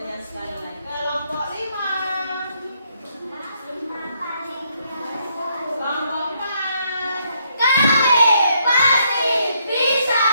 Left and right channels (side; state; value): both; inverted; correlation -0.73